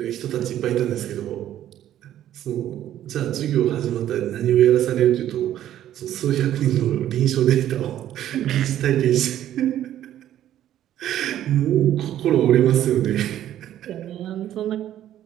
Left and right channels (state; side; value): quieter; left; 11.9 dB